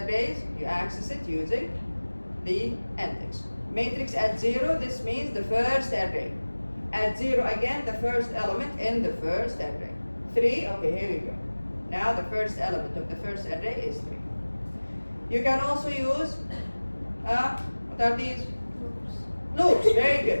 You access it using the index. Matrix at 0, this means the first array. At 0 again, the first element in the first array. 3, okay, here we go. Now the first element of the first array is 3. You can also use, what are these? Loops, very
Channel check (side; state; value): both; inverted; correlation -1.00